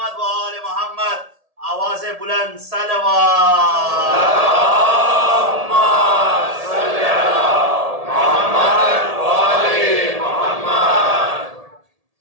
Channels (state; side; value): late; left; 1.7 ms